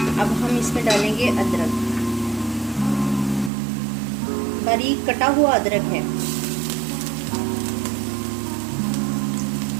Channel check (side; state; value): left; drops out; at 3.5 s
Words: अब हम इसमें डालेंगे अदरक, बारीक कटा हुआ अदरक है।